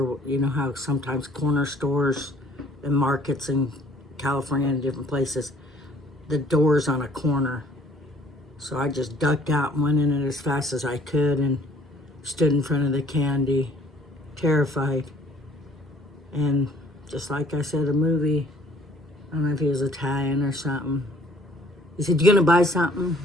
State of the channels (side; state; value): both; normal; correlation 0.57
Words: you know how sometimes corner stores and markets in California and different places, the door's on a corner. So I just ducked out and went in it as fast as I could and stood in front of the candy, terrified. And just like I said, a movie, I don't know if he was Italian or something. He said, "You gonna buy something?"